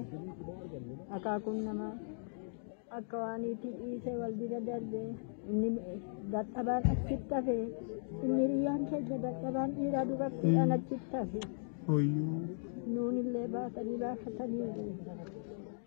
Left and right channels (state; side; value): silent; right; digital silence